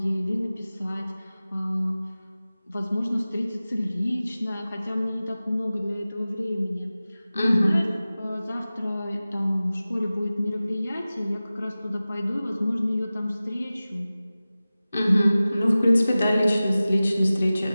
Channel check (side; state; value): both; inverted; correlation -0.97